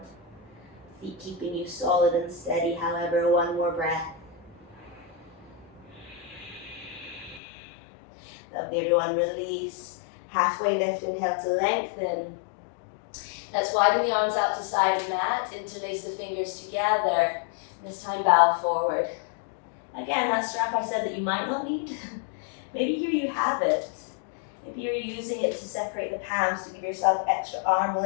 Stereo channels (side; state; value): right; drops out; at 7.4 s